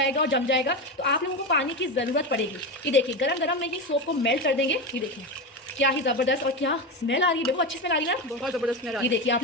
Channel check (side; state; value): both; normal; correlation 0.18